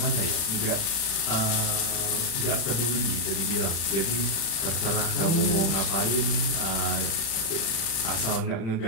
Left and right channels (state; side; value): late; right; 36 ms